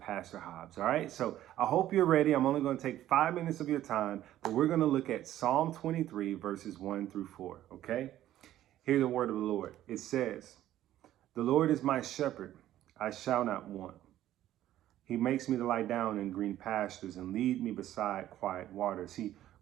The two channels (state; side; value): quieter; left; 13.1 dB